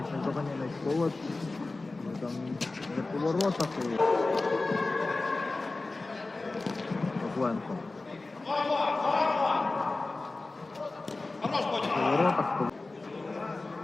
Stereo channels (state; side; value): quieter; right; 3.3 dB